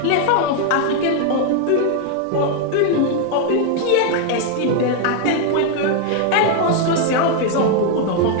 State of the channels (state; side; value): different; both; correlation 0.00